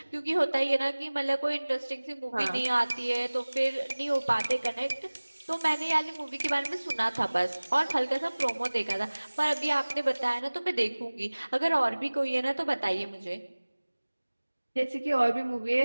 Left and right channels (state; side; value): inverted; both; correlation -1.00